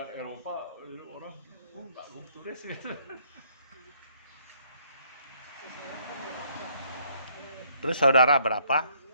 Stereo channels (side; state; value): both; inverted; correlation -0.67